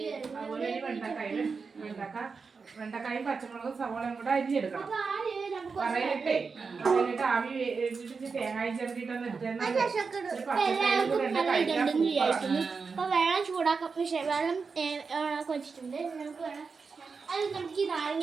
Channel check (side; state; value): left; quieter; 4.9 dB